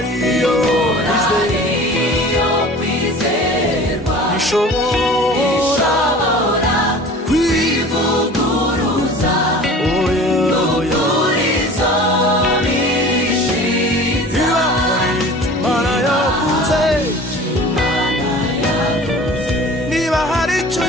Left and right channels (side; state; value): both; normal; correlation 0.42